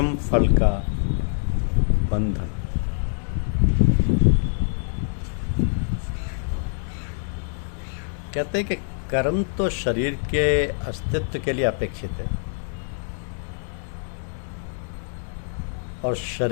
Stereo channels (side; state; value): right; silent; digital silence